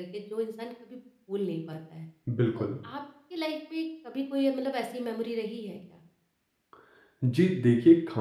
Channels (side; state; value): both; identical; correlation 1.00